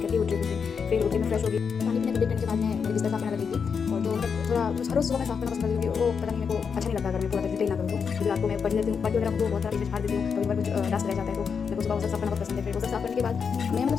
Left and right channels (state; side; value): quieter; right; 6.2 dB